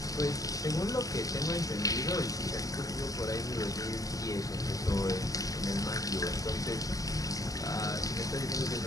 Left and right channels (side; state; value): right; late; 0.17 ms